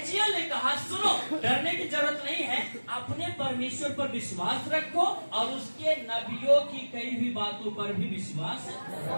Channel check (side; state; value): both; inverted; correlation -1.00